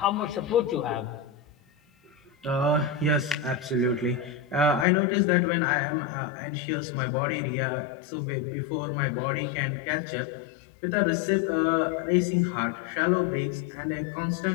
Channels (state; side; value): drops out; right; at 4.9 s